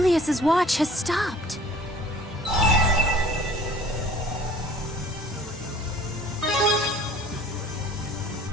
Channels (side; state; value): both; normal; correlation 0.49